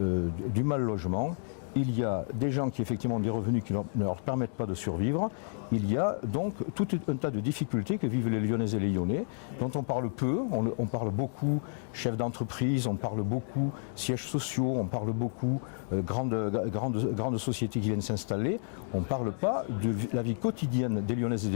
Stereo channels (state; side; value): silent; right; digital silence